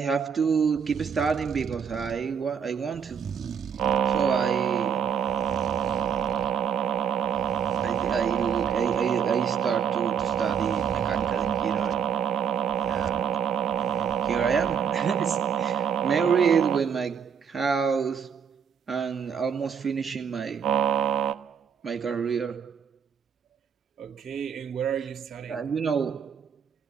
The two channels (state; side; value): quieter; left; 7.3 dB